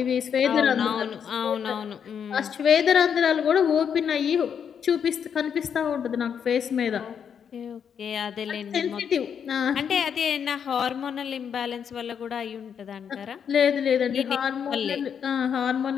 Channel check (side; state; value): right; quieter; 7.6 dB